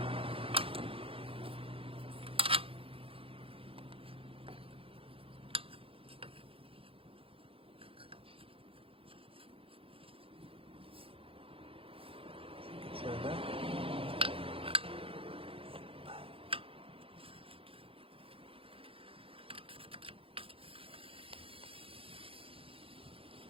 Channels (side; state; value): left; late; 0.27 ms